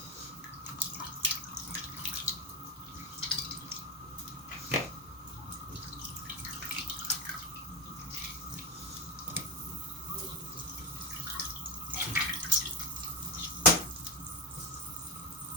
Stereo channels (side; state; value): both; normal; correlation 0.16